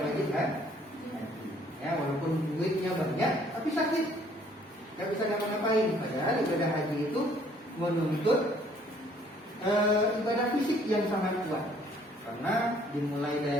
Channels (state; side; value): normal; both; correlation 0.60